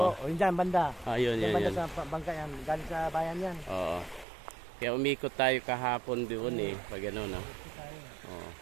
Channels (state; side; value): drops out; left; at 4.2 s